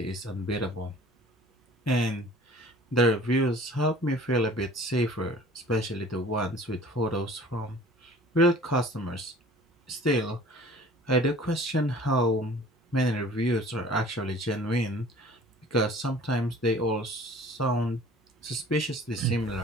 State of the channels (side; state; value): both; normal; correlation 0.48